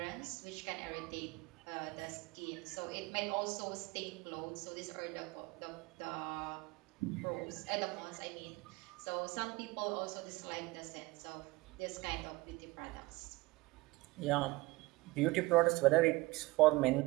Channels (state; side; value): quieter; left; 21.7 dB